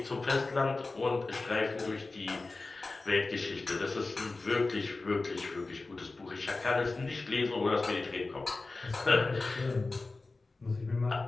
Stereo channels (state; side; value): quieter; right; 3.5 dB